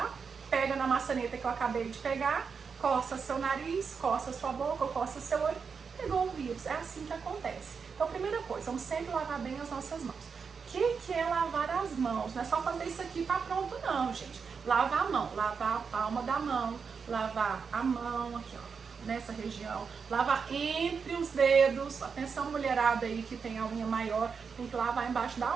pega na maçaneta que eu acabei de pegar, coça seu nariz, coça sua boca, coça seu olho, pegou o vírus. É assim que acontece. Então, primeira coisa, vamos sempre lavar bem as nossas mãos. O que é lavar as mãos? Não é só fazer isso aqui e tá pronto, não, gente. Lavar a mão, lavar a palma da mão, lavar a mão aqui, ó, nessa região, lavar entre os dedos. Atenção, mulherada aí que tem a unha maior, tem que lavar embaixo da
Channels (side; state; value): left; quieter; 5.8 dB